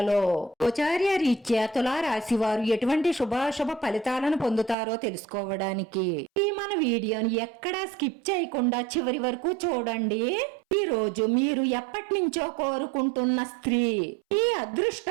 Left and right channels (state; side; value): drops out; left; at 4.8 s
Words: గోచార్య రీత్యా తులా రాశి వారు ఎటువంటి శుభాశుభ ఫలితాలను పొందుతారో తెలుసుకోవడానికి ఈ మన వీడియోని ఎక్కడా స్కిప్ చేయకుండా చివరి వరకు చూడండి. ఈ రోజు మీరు ఎప్పటి నుంచో కోరుకుంటున్న స్త్రీ మీ